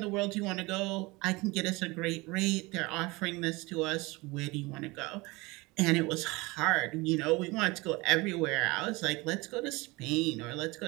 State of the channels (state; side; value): quieter; left; 23.6 dB